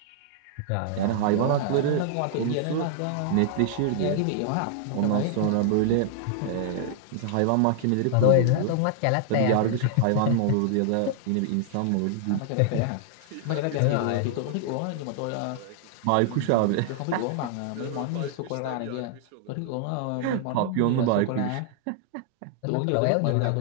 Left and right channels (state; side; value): different; both; correlation -0.01